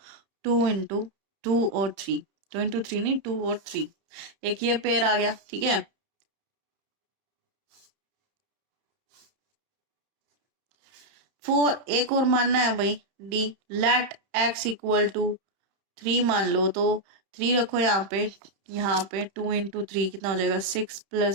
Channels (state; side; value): late; left; 31 ms